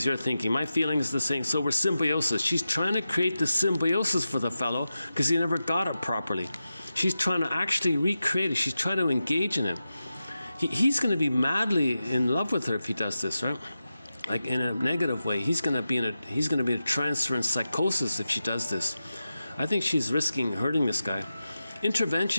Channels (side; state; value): both; inverted; correlation -0.92